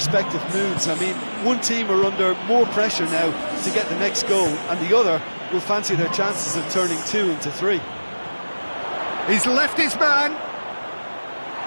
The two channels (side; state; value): both; inverted; correlation -1.00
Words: moods. I mean, one team are under more pressure now to get the next goal, and the other will fancy their chances of turning 2 into 3. He's left his man.